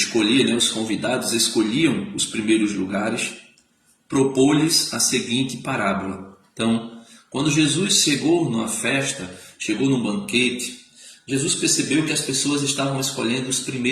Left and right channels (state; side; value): identical; both; correlation 1.00